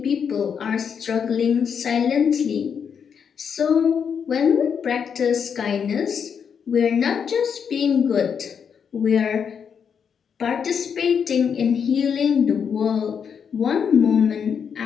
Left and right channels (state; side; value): quieter; right; 7.1 dB